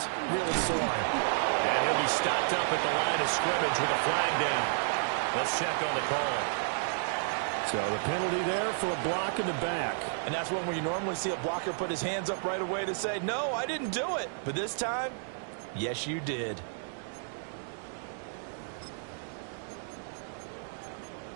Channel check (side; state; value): left; silent; digital silence